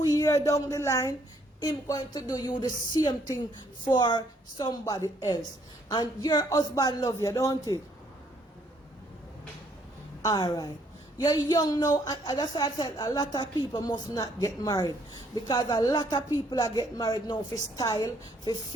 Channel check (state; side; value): normal; both; correlation 0.67